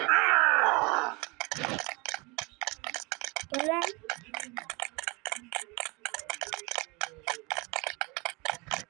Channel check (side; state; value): left; quieter; 27.4 dB